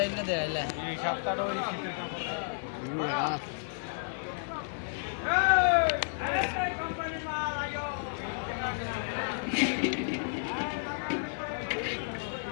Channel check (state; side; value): silent; right; digital silence